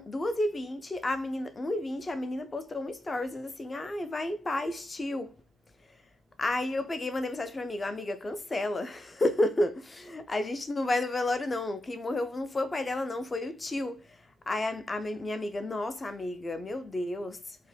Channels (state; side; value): normal; both; correlation 0.88